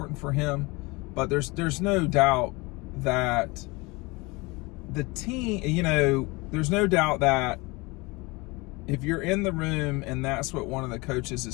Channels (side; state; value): right; quieter; 25.0 dB